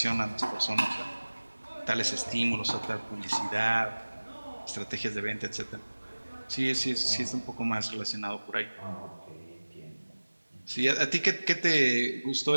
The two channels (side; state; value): both; inverted; correlation -1.00